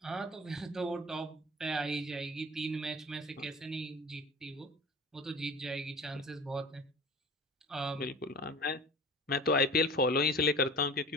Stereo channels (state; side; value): normal; both; correlation 0.39